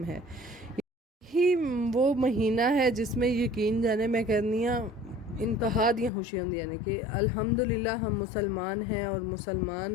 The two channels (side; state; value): right; drops out; at 6.1 s